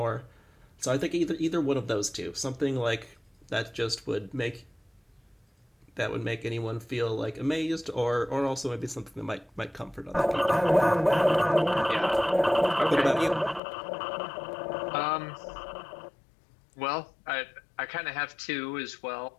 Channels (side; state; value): right; drops out; at 13.6 s